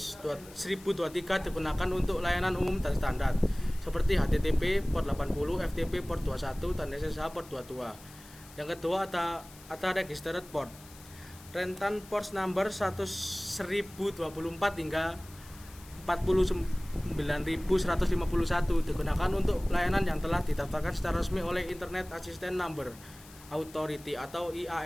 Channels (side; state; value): left; noise; hiss, 21 dB below the sound